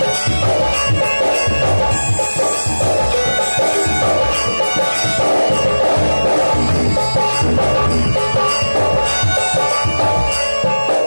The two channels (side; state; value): both; inverted; correlation -1.00